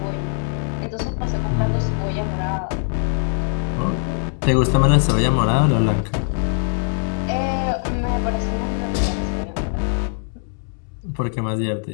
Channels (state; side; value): silent; right; 59 dB below the other